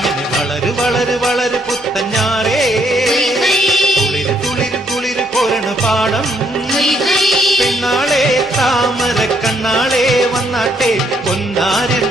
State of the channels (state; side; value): normal; both; correlation 0.71